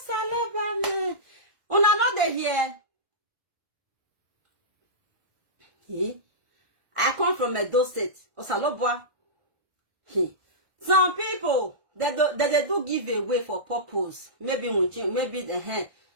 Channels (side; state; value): left; late; 1.6 ms